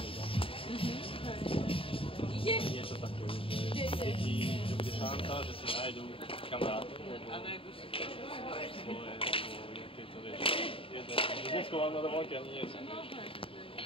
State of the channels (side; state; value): right; late; 0.26 ms